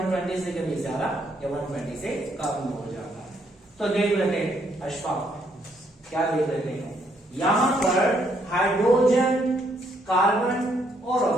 से कभी ज्यादा या 120 से कम हो जाता है। तो देख लेते हैं अशफाक, क्या देख लेते हैं, यहां पर हाइड्रोजन, कार्बन और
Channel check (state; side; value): normal; both; correlation 0.71